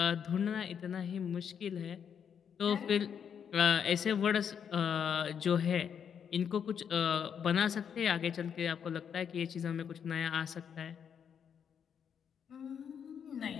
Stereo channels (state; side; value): quieter; right; 7.7 dB